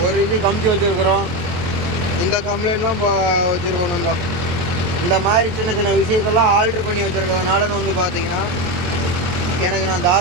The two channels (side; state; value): left; late; 23 ms